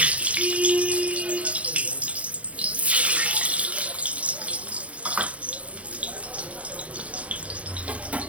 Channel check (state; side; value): late; left; 0.064 ms